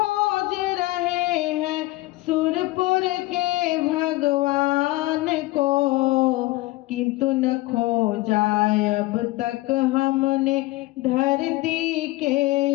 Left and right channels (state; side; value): quieter; right; 19.8 dB